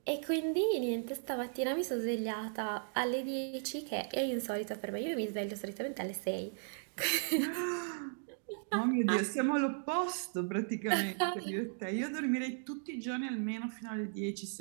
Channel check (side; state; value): left; silent; digital silence